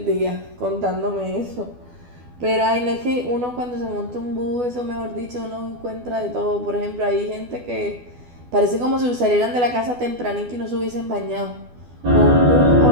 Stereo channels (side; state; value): left; late; 12 ms